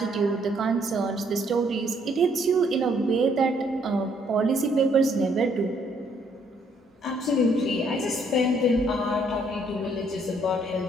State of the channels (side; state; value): both; normal; correlation 0.67